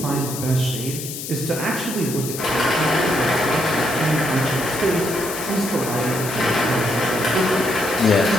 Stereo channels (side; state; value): left; noise; hiss, 8 dB below the sound